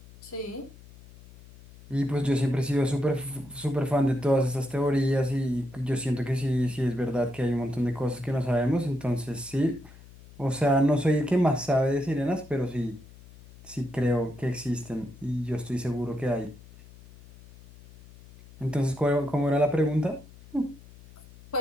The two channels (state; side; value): noise; left; hum, 21 dB below the sound